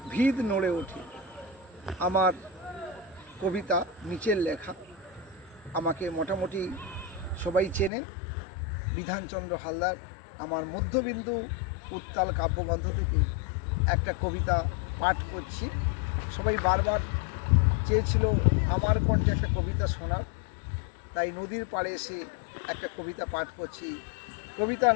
ভিত নড়ে ওঠে। আমার কবিতা নিচের লেখা। আমাকে মোটামুটি সবাই চেনেন, বিধানচন্দ্র হালদার। আমার মধ্যবিন্দু উত্তাল কাব্যগ্রন্থ থেকে একটা কবিতা পাঠ করছি। সবাই বারবার চেয়েছিল আমার কণ্ঠে একটা কবিতা শোনার, তাই নদীর পাড়ে এসে একটা কবিতা পাঠ করছি। কবিতার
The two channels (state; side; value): drops out; right; at 7.9 s